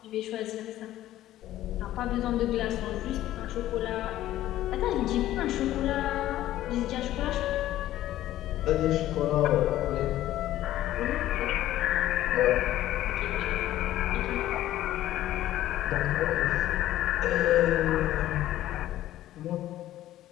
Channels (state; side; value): quieter; right; 14.0 dB